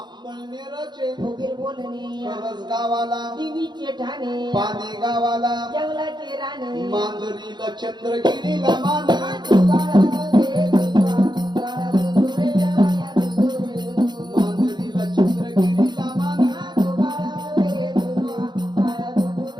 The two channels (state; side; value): late; left; 0.21 ms